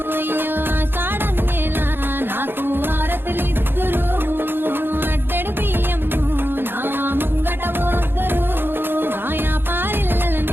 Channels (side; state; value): left; late; 0.10 ms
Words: అయ్యో ఆషాఢం నెల నాకు హారతులిద్దురు అడ్డెడు బియ్యము నా ముంగట పోద్దరు ఆయా